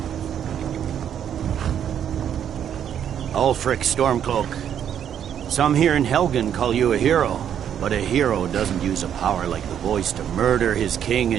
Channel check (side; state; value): left; quieter; 9.2 dB